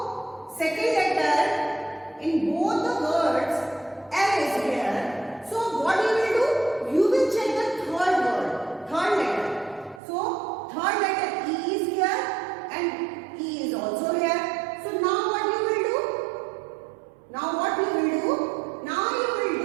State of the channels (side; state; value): left; drops out; at 10.0 s